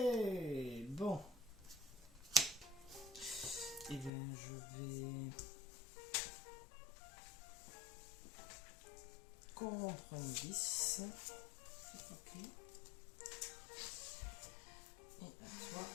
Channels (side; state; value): right; drops out; at 4.1 s